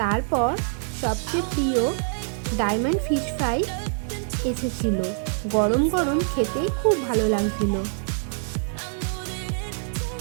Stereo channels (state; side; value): silent; left; digital silence